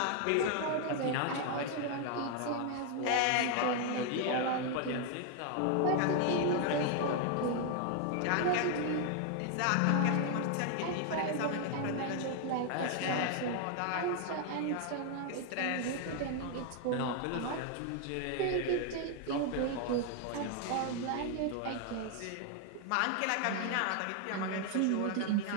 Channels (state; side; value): different; both; correlation 0.00